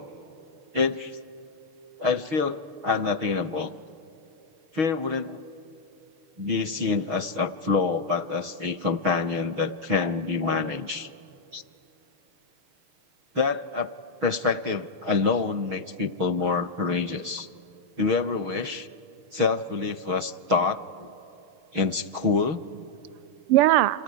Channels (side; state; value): left; late; 6.3 ms